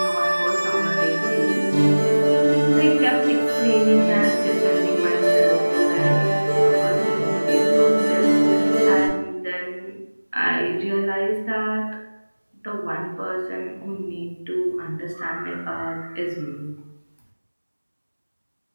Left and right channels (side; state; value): both; inverted; correlation -1.00